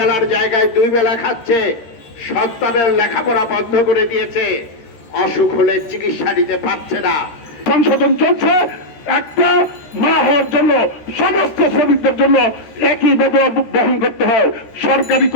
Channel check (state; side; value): late; right; 13 ms